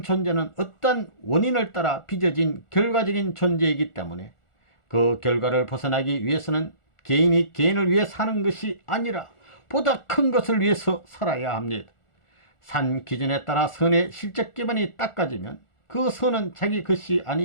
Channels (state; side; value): late; right; 1.4 ms